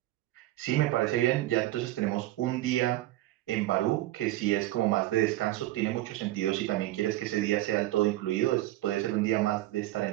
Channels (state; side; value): quieter; left; 16.1 dB